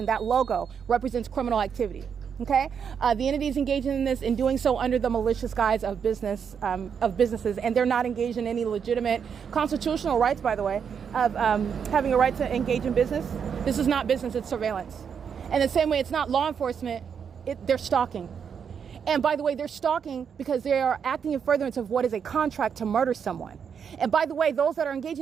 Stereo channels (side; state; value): left; quieter; 7.1 dB